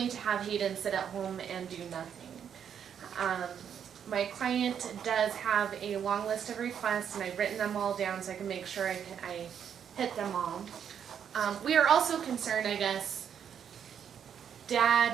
to have Hayden sit at home and do nothing. My client does have a long list of requests, and I've written them all down so I can make sure I hit them all. We are also concerned, I guess,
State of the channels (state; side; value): quieter; left; 8.3 dB